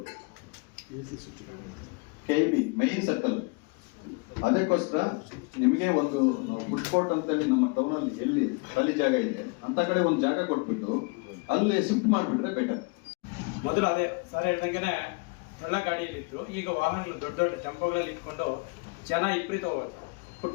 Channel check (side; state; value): right; quieter; 31.1 dB